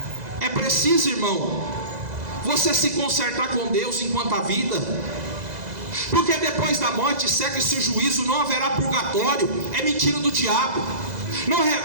É preciso, irmão, você se consertar com Deus enquanto há vida, porque depois da morte segue-se o juízo, não haverá purgatório, é mentira do diabo. Não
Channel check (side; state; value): left; late; 2.0 ms